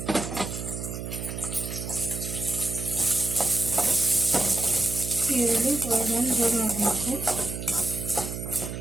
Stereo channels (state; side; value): noise; right; hum, 7 dB below the sound